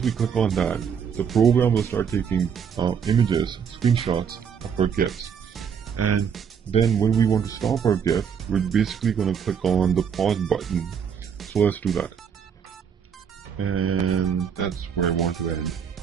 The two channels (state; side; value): quieter; left; 7.3 dB